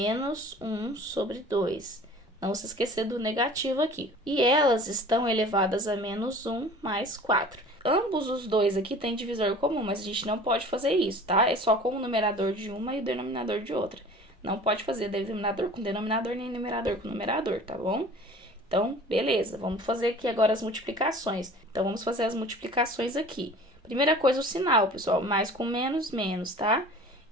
1 sobre 2. Não se esquecer do negativo aqui. E elas estão elevadas a menos 1 mais 4. Ambos os dois aqui têm divisor comum, mas a gente não pode fazer isso, tá? É só com o numerador de uma e o denominador de outra. Não pode fazer denominador com denominador, nem numerador com numerador, tá bom? Então, beleza. Vamos fazer aqui agora as multiplicações. Então, vamos fazer as multiplicações aqui. Primeira coisa, o sinal, pessoal. Mais com menos, menos, tá?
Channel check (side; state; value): both; normal; correlation 0.44